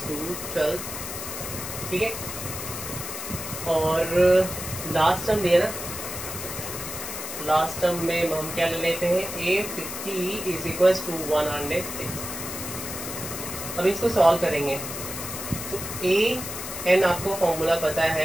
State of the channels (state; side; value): noise; left; hiss, 7 dB below the sound